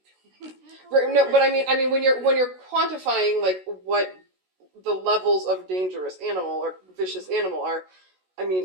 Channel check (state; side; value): late; left; 16 ms